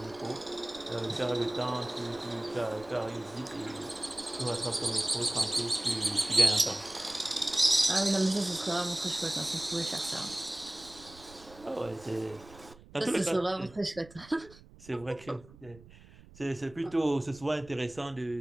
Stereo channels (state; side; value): noise; right; rumble, 21 dB below the sound